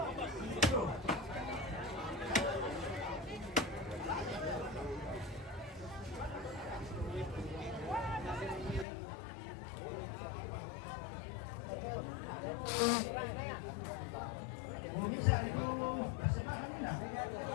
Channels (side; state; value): right; drops out; at 8.8 s